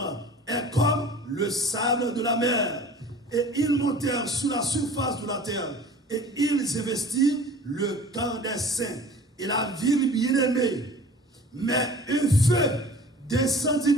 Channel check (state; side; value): normal; both; correlation 0.44